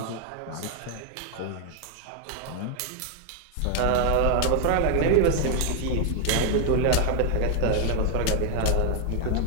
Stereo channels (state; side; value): different; both; correlation 0.00